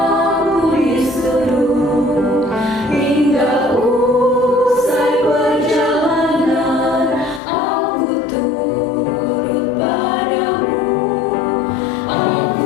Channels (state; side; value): drops out; right; at 7.4 s